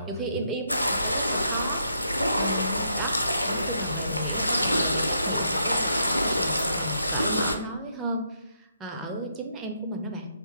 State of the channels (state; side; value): inverted; both; correlation -0.76